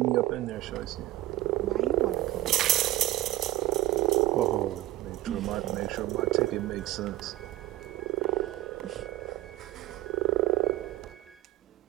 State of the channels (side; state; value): left; quieter; 16.7 dB